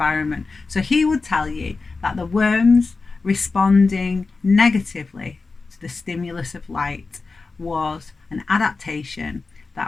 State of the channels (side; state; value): right; quieter; 4.1 dB